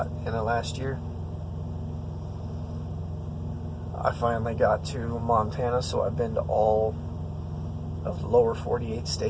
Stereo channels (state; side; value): identical; both; correlation 1.00